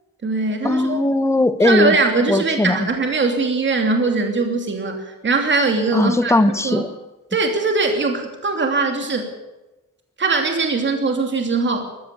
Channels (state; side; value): normal; both; correlation 0.42